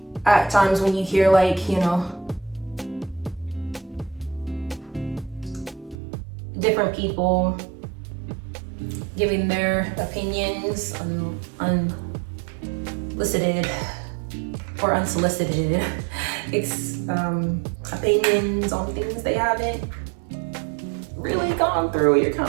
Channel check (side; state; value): left; drops out; at 6.0 s